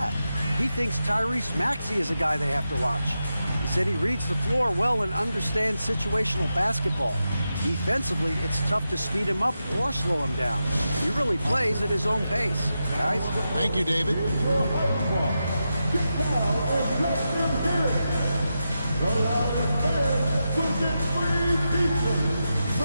He thinks Tyrese Maxey is a guy they have to watch. He said he reads the floor well and understands situational basketball. Defensively, it's tough to speed him up or slow him down. He really plays at his own pace. Guys? Thank you, David.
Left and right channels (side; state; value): both; inverted; correlation -0.89